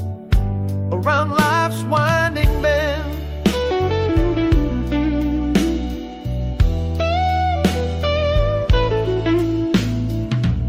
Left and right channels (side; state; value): both; identical; correlation 1.00